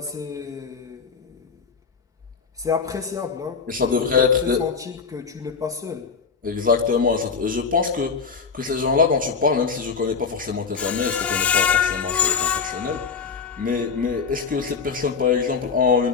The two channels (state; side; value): quieter; right; 5.6 dB